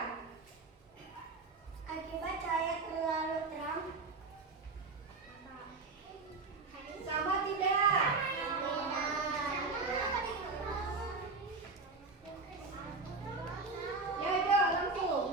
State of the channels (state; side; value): quieter; left; 3.8 dB